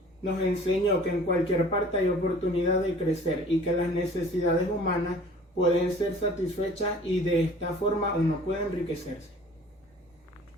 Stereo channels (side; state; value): both; normal; correlation 0.48